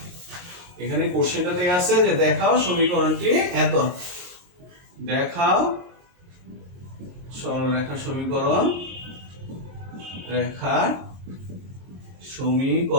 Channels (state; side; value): late; left; 22 ms